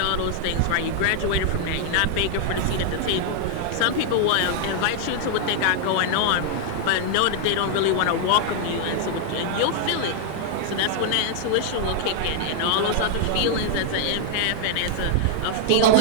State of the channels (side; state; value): both; different; correlation 0.00